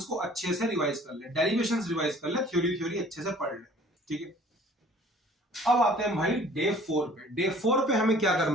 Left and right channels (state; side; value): normal; both; correlation 0.52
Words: को अच्छे से रिवाइज कर ले, डेरिवेशंस रिवाइज कर ले, थ्योरी थ्योरी अच्छे से पढ़ ले। ठीक है, अब आते हैं भाई डे 4 पे। डे 4 पे हमें क्या